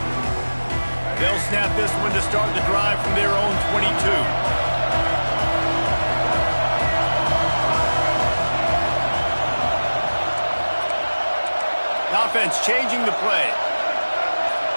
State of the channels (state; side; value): inverted; both; correlation -1.00